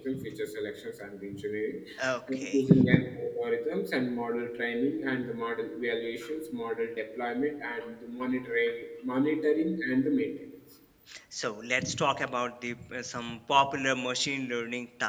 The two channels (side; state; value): both; identical; correlation 1.00